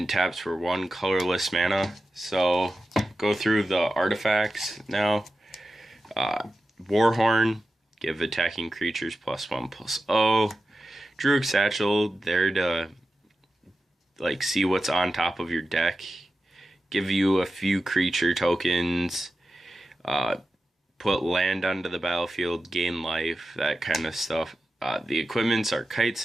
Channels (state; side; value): normal; both; correlation 0.93